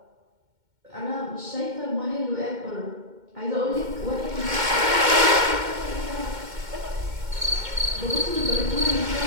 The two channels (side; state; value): left; late; 2.1 ms